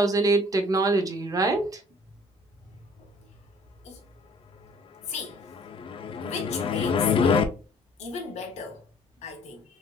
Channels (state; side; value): normal; both; correlation 0.55